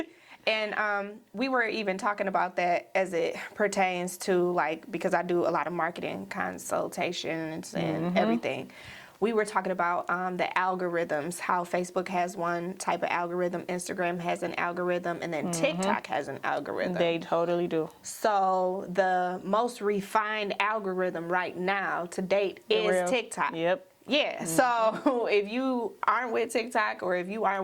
And we were even talking about that as it pertains to like, because I do a lot of marketing consultations and everything. We were talking about the algorithms, how Facebook has one type of algorithm, Instagram has an algorithm, and then TikTok has an algorithm. They totally do. So the most refined algorithm right now to date is TikTok. Yep. Yeah, so if you aren't with TikTok or if you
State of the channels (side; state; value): both; identical; correlation 1.00